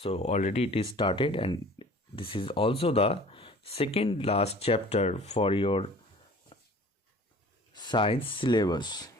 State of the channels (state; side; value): normal; both; correlation 0.47